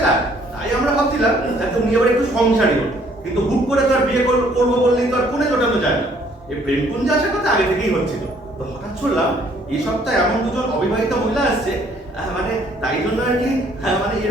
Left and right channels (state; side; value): normal; both; correlation 0.62